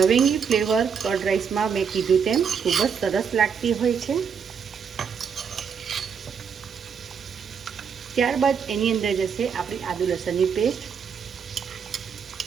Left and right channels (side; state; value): left; quieter; 6.7 dB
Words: ફ્લેવર કર્ડ રાઈસમાં મેં કીધું તેમ ખૂબ જ સરસ લાગતી હોય છે. ત્યારબાદ એની અંદર જશે આપણી આદુ લસણની પેસ્ટ,